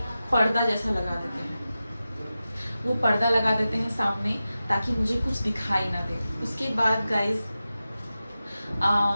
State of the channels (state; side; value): inverted; both; correlation -0.93